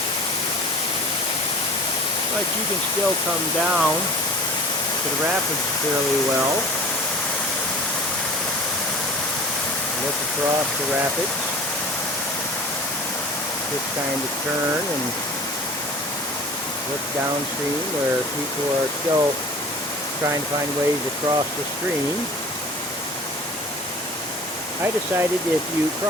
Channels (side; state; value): both; normal; correlation 0.41